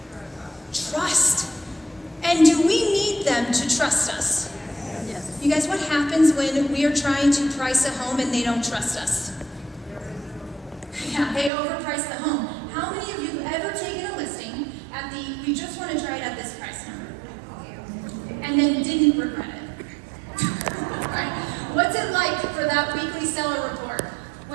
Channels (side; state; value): left; drops out; at 11.5 s